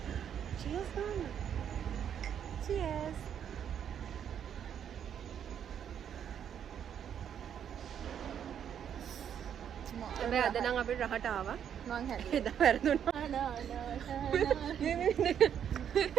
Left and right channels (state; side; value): quieter; left; 8.8 dB